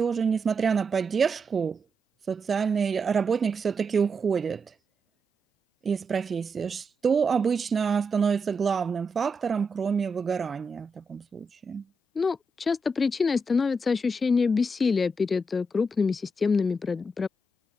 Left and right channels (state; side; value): normal; both; correlation 0.85